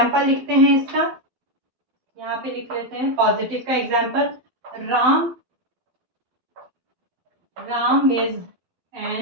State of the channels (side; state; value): left; late; 12 ms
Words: लिखते हैं इसका, यहाँ पे लिख लेते हैं पॉजिटिव का example. Ram, Ram is